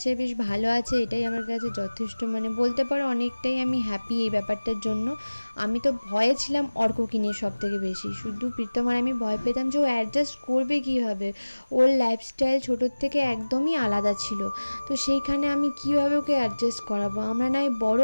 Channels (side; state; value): both; inverted; correlation -1.00